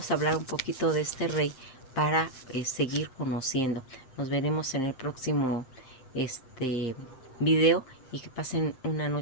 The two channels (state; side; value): late; right; 7.7 ms